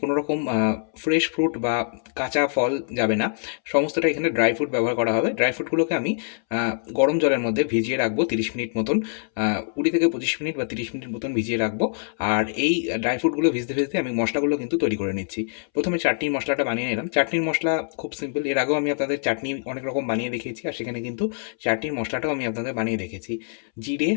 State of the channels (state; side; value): silent; right; 62 dB below the other